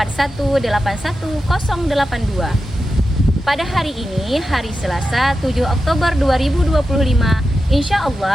Pada hari ini, hari Selasa 7 Oktober 2025, insya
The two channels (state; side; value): normal; both; correlation 0.91